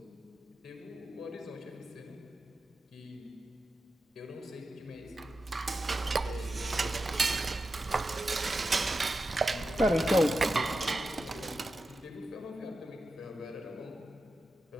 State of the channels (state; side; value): normal; both; correlation 0.90